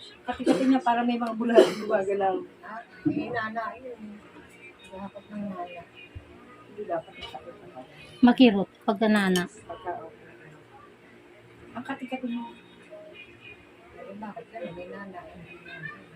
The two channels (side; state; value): both; identical; correlation 1.00